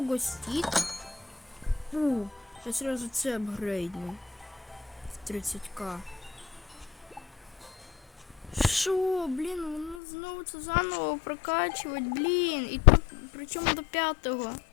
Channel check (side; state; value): right; drops out; at 10.0 s